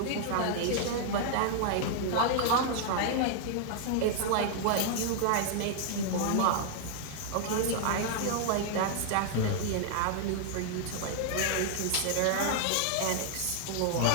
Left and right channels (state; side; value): different; both; correlation -0.01